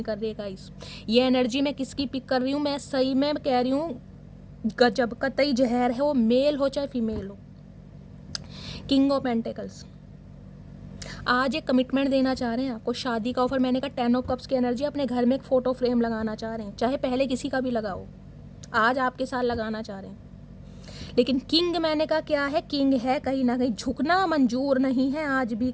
कर रही है गाइस। ये एनर्जी मैं किसकी पिक कर रही हूँ? मैं सही में कह रही हूँ गजब, कतई जहर है, वो मेल हो चाहे फीमेल हो। किंग ऑफ पेंटिकल्स आज एक कमिटमेंट देना चाह रहे हैं आपको, शादी का ऑफर। मैंने कहा 10 ऑफ कप्स की एनर्जी, अपने घर में एक फ़ोटो फ्रेम लगाना चाह रहे हैं, चाहे पहले किसी का भी लगाओ, आज आपके साथ लगाना चाह रहे हैं। लेकिन किंग मैंने कहा क्या है? किंग है, कहीं ना कहीं झुकना मंजूर नहीं है आज भी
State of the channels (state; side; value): identical; both; correlation 1.00